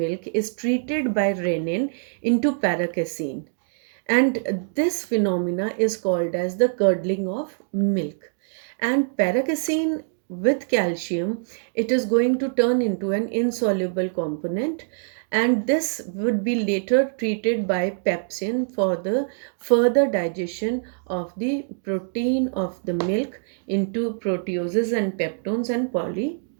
is treated by renin into paracasein, and this phenomena is called as the curdling of milk. And paracasein with calcium, it is going to turn into an insoluble component, and this would be later treated by pepsin for the further digestion of the protein of the milk into proteoses and peptones and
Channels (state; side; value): silent; left; digital silence